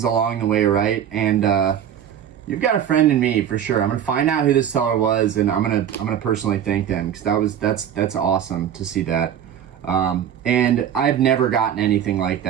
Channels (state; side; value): quieter; left; 9.6 dB